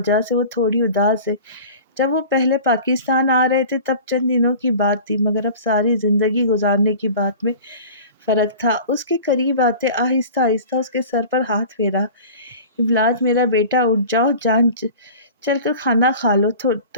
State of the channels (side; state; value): both; inverted; correlation -0.40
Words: سے وہ تھوڑی اداس ہے۔ جب وہ پہلے پاکستان آ رہے تھے تب چند دنوں کی بات تھی، مگر اب ساری زندگی گزارنے کی بات میں فرق تھا۔ اس کے قریب آتے آہستہ آہستہ اس کے سر پر ہاتھ پھیرا۔ ابلاج میرا بیٹا اٹھ جاؤ، جان چل کر کھانا کھا لو